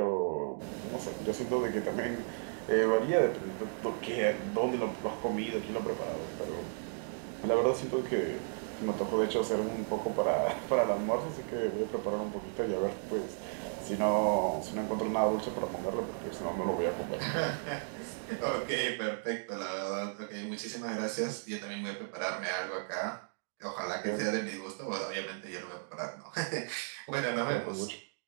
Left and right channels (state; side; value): silent; left; digital silence